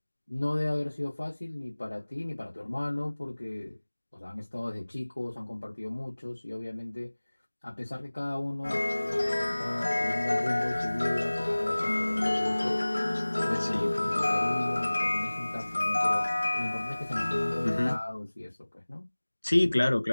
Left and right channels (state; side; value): inverted; both; correlation -1.00